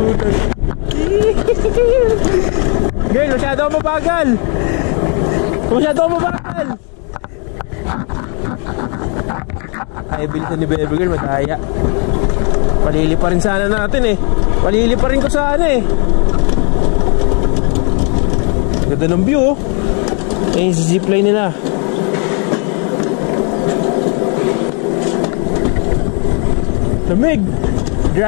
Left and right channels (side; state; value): right; quieter; 37.5 dB